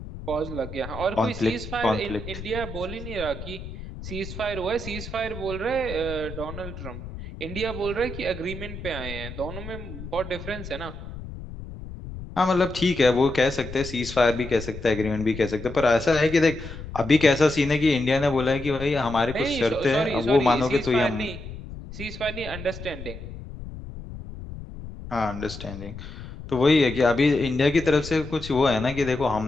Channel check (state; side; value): noise; left; rumble, 11 dB below the sound